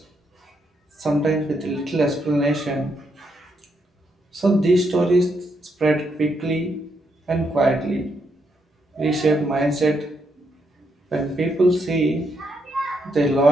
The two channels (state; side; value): normal; both; correlation 0.78